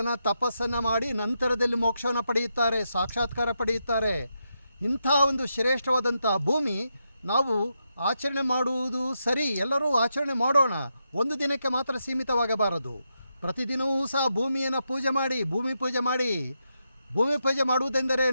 ತಪಸ್ಸನ್ನು ಮಾಡಿ ನಂತರದಲ್ಲಿ ಮೋಕ್ಷವನ್ನು ಪಡೆಯುತ್ತಾರೆ, ಸಾಕ್ಷಾತ್ಕಾರ ಪಡೆಯುತ್ತಾರೆ. ಇಂಥ ಒಂದು ಶ್ರೇಷ್ಠವಾದಂಥ ಭೂಮಿ ನಾವು ಆಚರಣೆ ಮಾಡುವುದು ಸರಿ, ಎಲ್ಲರೂ ಆಚರಣೆ ಮಾಡೋಣ. ಒಂದು ದಿನಕ್ಕೆ ಮಾತ್ರ ಸೀಮಿತವಾಗಬಾರದು. ಪ್ರತಿದಿನವೂ ಸಹ ಭೂಮಿಯನ್ನು ಪೂಜೆ ಮಾಡಿ, ಭೂಮಿ ಪೂಜೆ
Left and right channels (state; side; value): inverted; both; correlation -0.84